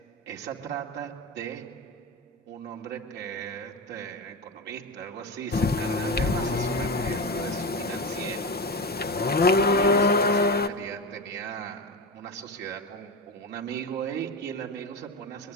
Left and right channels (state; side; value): normal; both; correlation 0.20